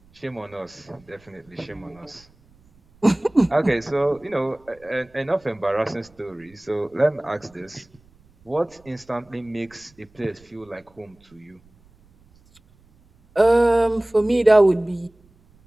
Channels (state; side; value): noise; right; rumble, 30 dB below the sound